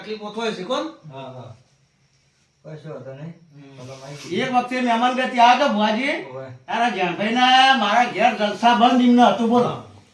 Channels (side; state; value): both; identical; correlation 1.00